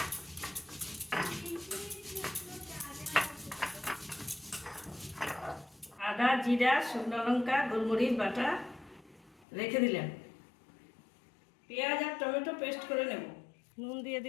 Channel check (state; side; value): drops out; right; at 9.5 s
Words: আদা, জিরা, শুকনো লঙ্কা, গোলমরিচ বাটা রেখে দিলাম। পেঁয়াজ আর টমেটো পেস্ট করে নেব। নুন দিয়ে